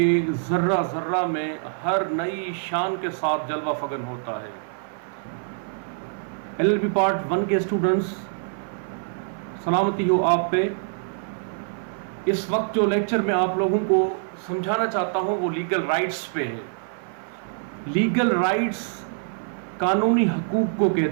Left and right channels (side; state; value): left; silent; 55 dB below the other